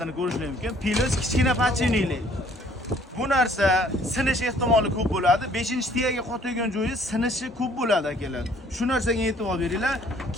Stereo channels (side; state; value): both; normal; correlation 0.59